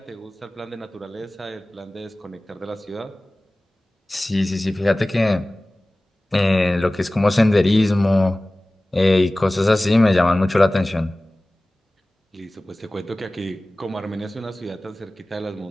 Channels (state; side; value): normal; both; correlation 0.98